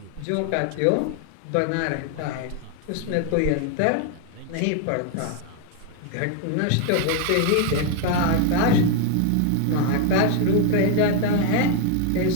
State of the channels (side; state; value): both; different; correlation 0.00